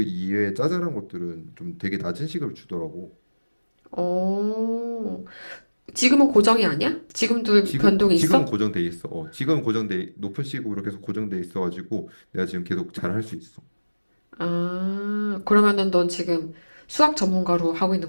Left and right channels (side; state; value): both; inverted; correlation -1.00